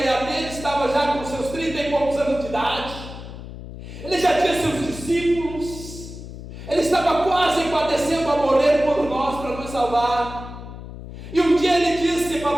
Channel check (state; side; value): noise; left; hum, 12 dB below the sound